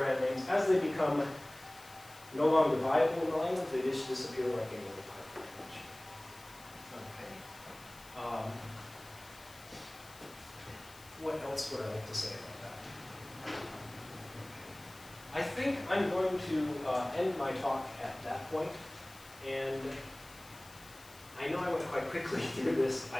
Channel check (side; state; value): left; noise; hiss, 21 dB below the sound